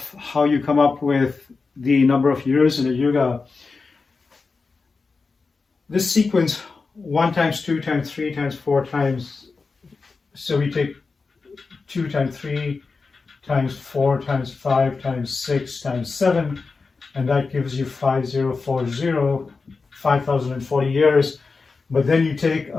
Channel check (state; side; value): quieter; right; 4.4 dB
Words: how you come up with the number of years in a yuga, this sequence 1 times 2 times 3 times 4 times, so we take 2 times 3 times 4 times 5 times 6 times 7, and that gives you 5040, 5040 years. But then you take